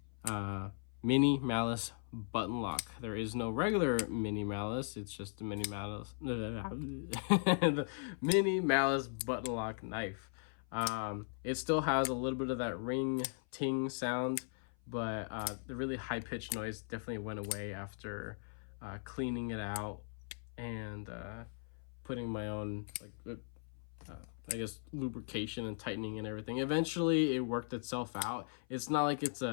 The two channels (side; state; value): right; silent; 52 dB below the other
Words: Mini Malice button lock. There is no regular Mini Malice. It's just the Mini Malice, the Mini Malice button lock knife. It still has a little bit of that ring ting sound, but the really high pitched noise definitely went away after cleaning it out and putting my own I guess lubrication and tightening and everything. Eventually it worked itself out. It's not like it's